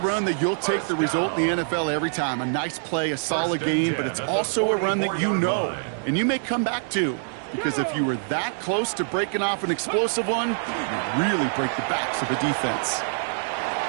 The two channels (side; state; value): left; silent; digital silence